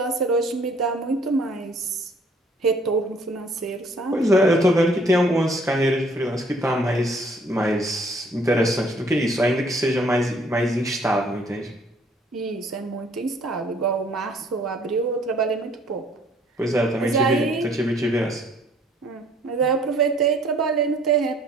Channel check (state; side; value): normal; both; correlation 0.60